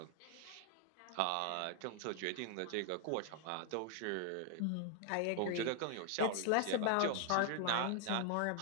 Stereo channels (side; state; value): both; different; correlation 0.00